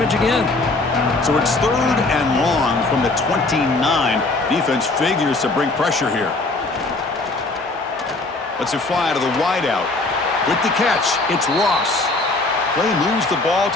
again. So it's third and long from the 29. Defense figures to bring pressure here. Let's it fly to the wideout. With the catch, it's Ross. Play moves the ball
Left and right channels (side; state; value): right; quieter; 3.2 dB